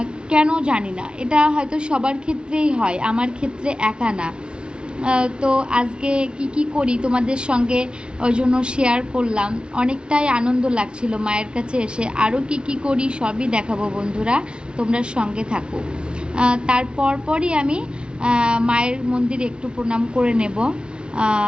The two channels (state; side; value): late; left; 0.055 ms